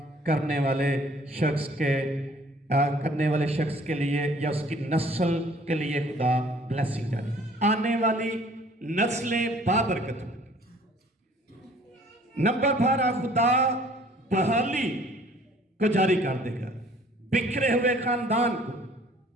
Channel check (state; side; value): normal; both; correlation 0.55